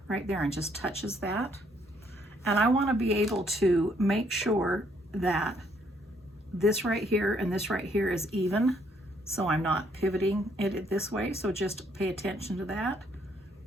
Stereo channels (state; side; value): normal; both; correlation 0.68